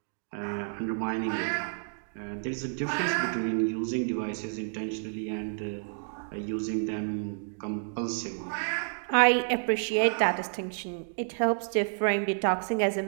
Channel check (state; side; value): silent; left; digital silence